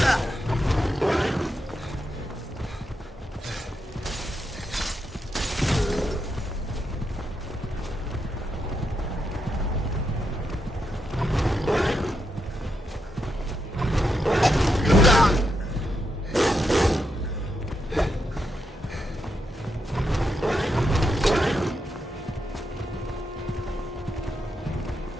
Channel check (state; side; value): normal; both; correlation 0.83